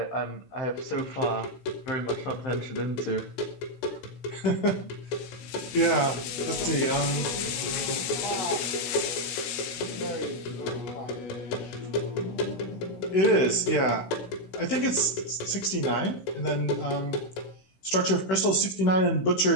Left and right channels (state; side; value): late; right; 16 ms